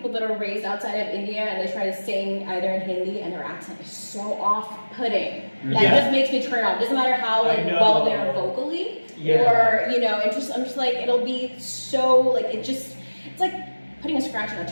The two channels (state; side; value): inverted; both; correlation -1.00